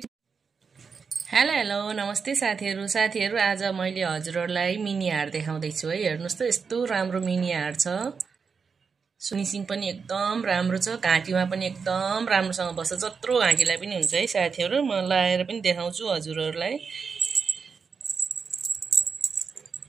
हेलो नमस्ते साथीहरु आज मैले हजुरहरुलाई मिनी हार देखाउँदै छु है। हेर्नुस् त यस्तो राम्रो मिनी हार छ। फिनिशिङ पनि एकदम राम्रो छ। घाँटीमा पनि एकदम राम्रोसँग बस्छ। जत्रो घाँटीलाई पनि हुन्छ है साथीहरु। म लाएर पनि देखाउँछु हजुरहरुलाई।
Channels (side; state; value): left; quieter; 5.6 dB